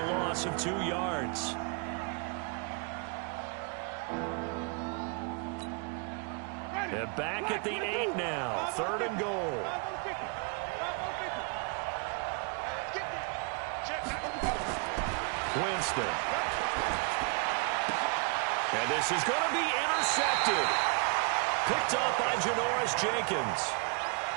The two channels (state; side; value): quieter; left; 36.5 dB